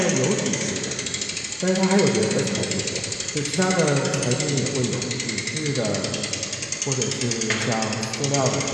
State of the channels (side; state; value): both; identical; correlation 1.00